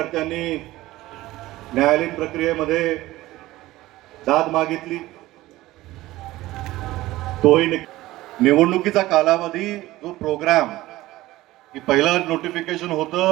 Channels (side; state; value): left; quieter; 17.3 dB